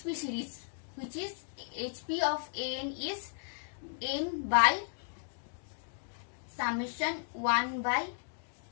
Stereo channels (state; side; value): silent; right; digital silence